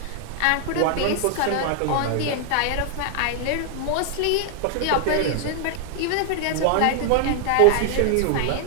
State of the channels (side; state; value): both; different; correlation 0.00